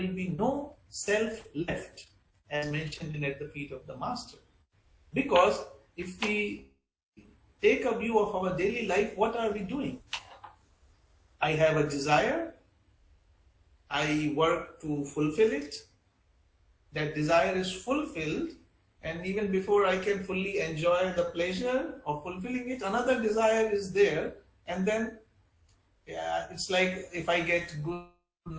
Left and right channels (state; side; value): identical; both; correlation 1.00